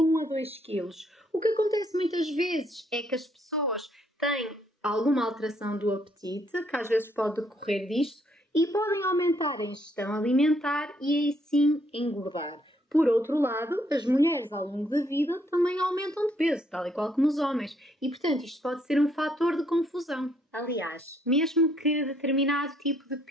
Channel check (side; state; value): both; normal; correlation 0.70